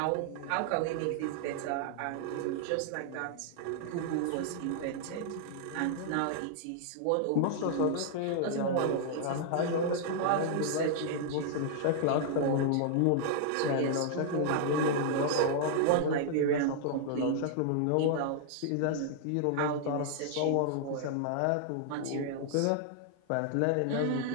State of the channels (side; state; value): both; different; correlation -0.01